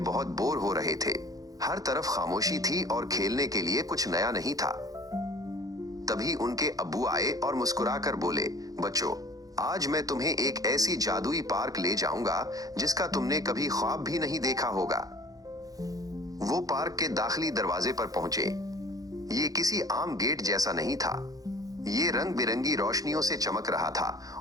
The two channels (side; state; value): left; late; 0.17 ms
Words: बहुत बोर हो रहे थे। हर तरफ खामोशी थी और खेलने के लिए कुछ नया नहीं था। तभी उनके अब्बू आए और मुस्कुराकर बोले, बच्चों, आज मैं तुम्हें एक ऐसी जादुई पार्क ले जाऊंगा जिसका तुमने कभी ख्वाब भी नहीं देखा होगा। वो पार्क के दाखिली दरवाजे पर पहुंचे। ये किसी आम गेट जैसा नहीं था। ये रंग बिरंगी रोशनियों से चमक रहा